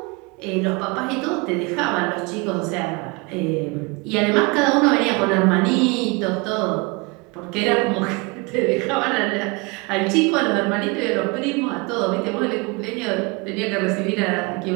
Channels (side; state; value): left; quieter; 28.1 dB